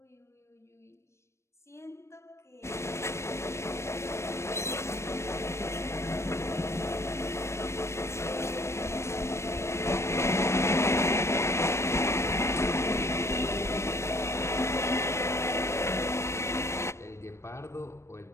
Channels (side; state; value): right; late; 0.13 ms